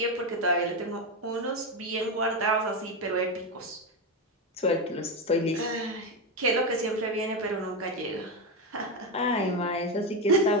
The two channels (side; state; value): both; normal; correlation 0.11